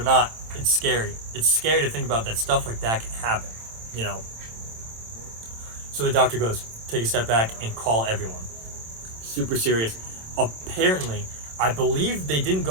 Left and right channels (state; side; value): late; left; 27 ms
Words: not, it's scary. It's scary to think about that stuff like that can happen, So the doctor goes, take a step back and call everyone. Super serious. Apparently, I believe they didn't